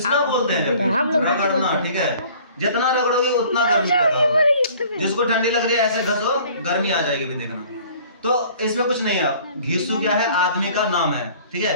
बोलते हैं। रगड़ना। ठीक है। जितना रगड़ोगे उतना गर्मी पैदा होगा। जिसको ठंडी लग रही है ऐसे घसो, गर्मी आ जाएगी। भी देखना। तो इसमें कुछ नहीं है। घीसू क्या है? आदमी का नाम है। ठीक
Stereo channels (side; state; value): both; inverted; correlation -0.52